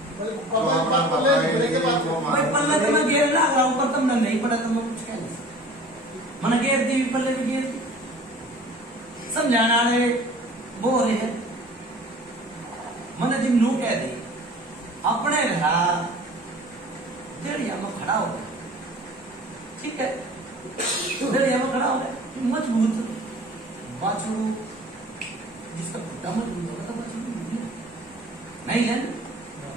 भाई पल्ला तो मैं घेर ला रहा हूँ पर तुमने नहीं पढ़ा तो मैं कुछ कह नहीं सकता मैंने घेर दी पल्ले भी घेर दी समझाना वो रहे मैंने जिम नू कह दी अपने घर देड़िया में खड़ा हो गया, ठीक है, देड़िया में खड़ा हो गया, मजबूत बाछड़ू जिसका खुट्टा मजबूत होगा तो बाछड़ू नहीं है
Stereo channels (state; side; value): normal; both; correlation 0.45